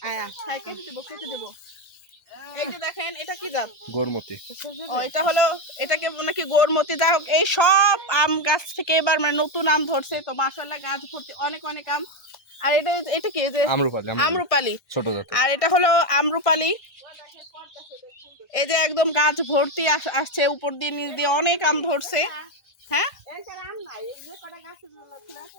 হ্যাঁ কেটে দেবো কেটে দেবো। এই যে দেখেন এটা কি জাত? গোরমতি। ও এটা হলো, এটাকে নাকি গোরমতি। যাই হোক, এই সব আম গাছ থেকে এবার মানে নতুন আম ধরছে, তো মাশাআল্লাহ গাছ ভর্তি অনেক অনেক আম। আর এটা এটা কি? যে আম্রপালি। আম্রপালি ছোট জাতের। আর এটা হলো আম্রপালি। এই যে একদম গাছ ভর্তি আসছে, উপর দিয়ে নিচ দিয়ে অনেক আম ধরছে। হ্যাঁ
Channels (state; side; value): late; right; 1.6 ms